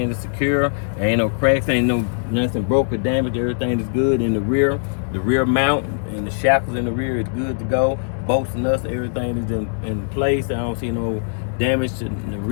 is secure. There ain't no cracks, ain't nothing broke or damaged. Everything is good in the rear mount and the shackles in the rear is good to go. Bolts and nuts, everything is in place. I don't see no damage to the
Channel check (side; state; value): right; silent; digital silence